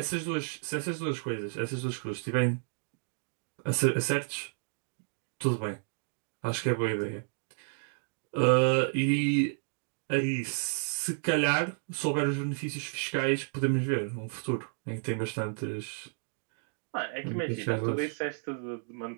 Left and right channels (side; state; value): left; silent; 57 dB below the other